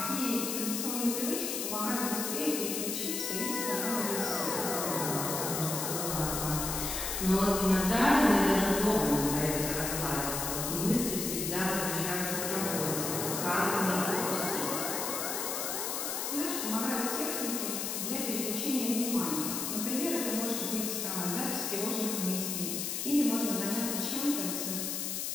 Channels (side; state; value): left; noise; hiss, 2 dB below the sound